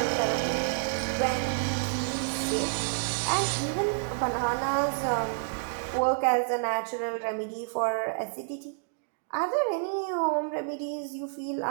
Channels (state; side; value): silent; left; digital silence